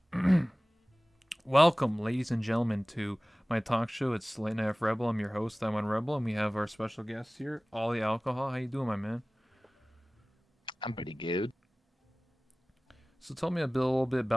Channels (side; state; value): both; normal; correlation 0.98